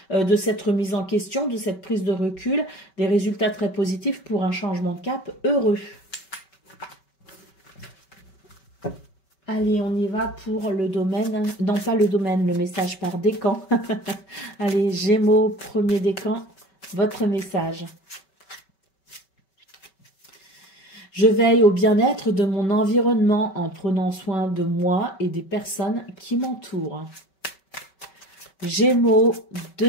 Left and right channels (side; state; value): right; late; 5.2 ms